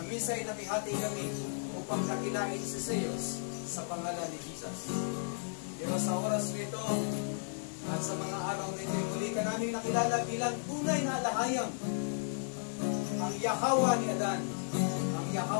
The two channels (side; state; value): right; silent; digital silence